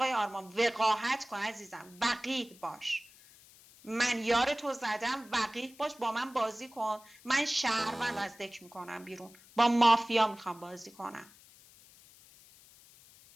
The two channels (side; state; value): left; noise; hiss, 24 dB below the sound